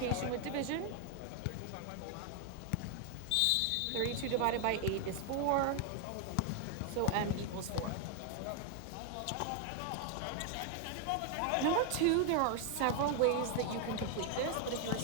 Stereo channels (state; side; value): different; both; correlation 0.01